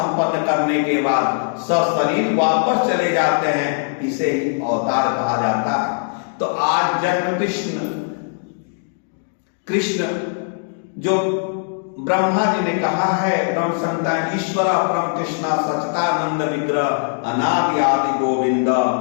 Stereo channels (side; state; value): right; silent; digital silence